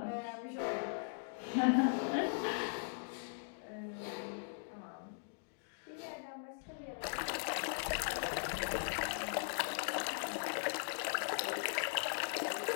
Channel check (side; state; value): right; silent; digital silence